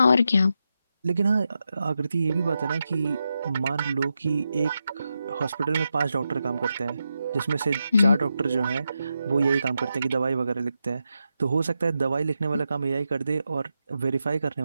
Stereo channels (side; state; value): both; inverted; correlation -0.87